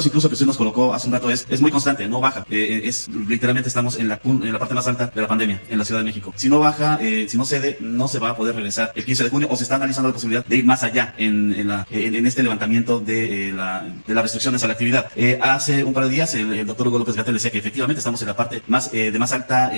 incluso que usted nos colocó hace un rato es muy constante, no baja. Literalmente estamos en la parte más alta de la pandemia en la Ciudad de México. Si no baja, si no cede, no se va a poder regresar el 15 de junio o se está analizando la posibilidad de ir más allá en este levantamiento de las restricciones a la actividad. Hace un par de días el doctor Hugo López-Gatell decía que efectivamente estamos en la parte de más alta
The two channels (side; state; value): both; inverted; correlation -1.00